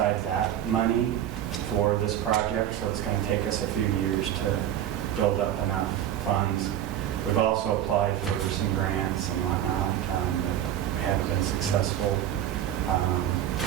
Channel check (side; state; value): left; quieter; 11.2 dB